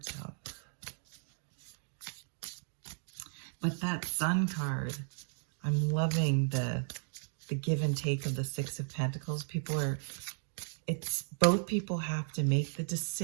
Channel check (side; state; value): left; silent; 54 dB below the other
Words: out. But that Sun card, I'm loving the give and take of the Six of Pentacles. Both people have to make the